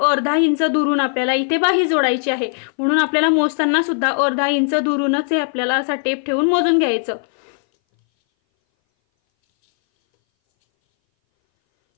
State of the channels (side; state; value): right; silent; 61 dB below the other